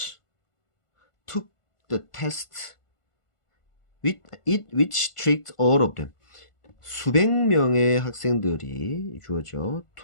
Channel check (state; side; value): late; right; 1.5 ms